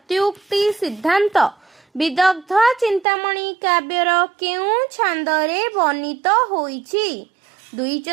सिद्धांत विदग्ध चिंतामणि काव्यर केउं छांदरे वर्णित होईछि? द्वि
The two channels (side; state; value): left; drops out; at 3.1 s